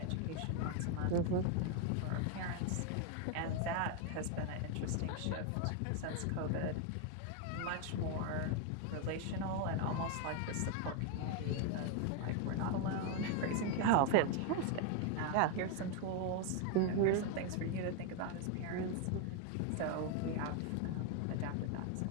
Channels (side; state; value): both; different; correlation 0.01